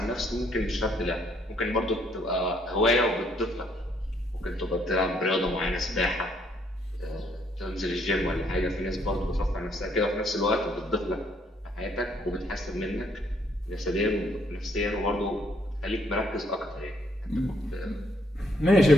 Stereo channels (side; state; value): both; normal; correlation 0.69